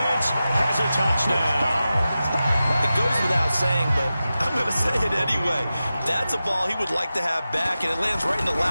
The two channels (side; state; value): both; inverted; correlation -0.93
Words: has a touchdown. It goes without saying, but I'm going to say it anyway. That's a ball he would like to have back, and it lands right in the